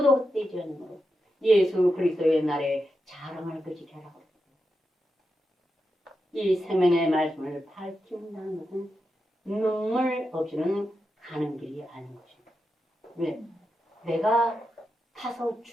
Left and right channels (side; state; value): both; normal; correlation 0.88